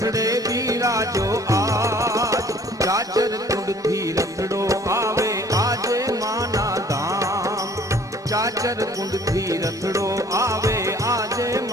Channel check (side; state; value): both; normal; correlation 0.54